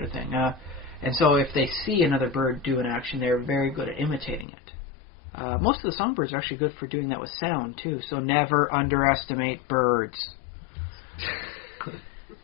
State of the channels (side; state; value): right; drops out; at 4.5 s